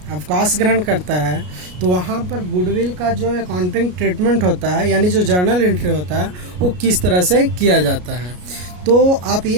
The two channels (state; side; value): late; left; 33 ms